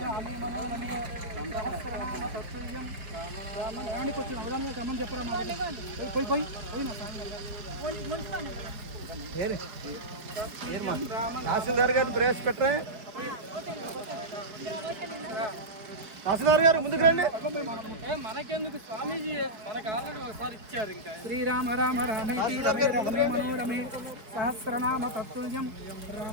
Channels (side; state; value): left; late; 4.6 ms